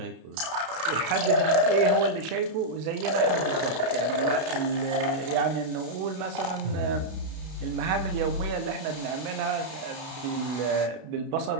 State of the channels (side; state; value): left; late; 32 ms